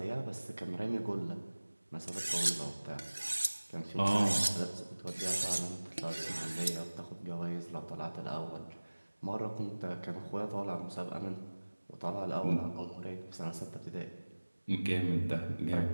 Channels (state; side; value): inverted; both; correlation -1.00